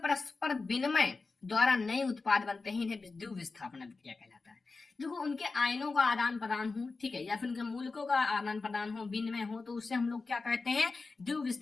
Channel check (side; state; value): right; quieter; 4.0 dB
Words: विनिमय द्वारा नए उत्पाद बनते हैं, इन्हें द्विविस्थापन अभिक्रिया कहलाता है। देखो उनके आयनों का आदान प्रदान हो, ठीक है, या फिर उनके मूलकों का आदान प्रदान हो, विनिमय हो, तो उससे हम लोग क्या कहते हैं,